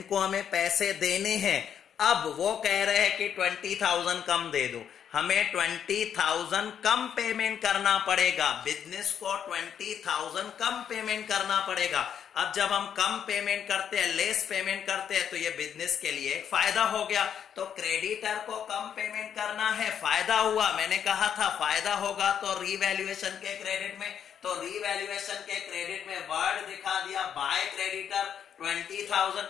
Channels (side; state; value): right; quieter; 8.6 dB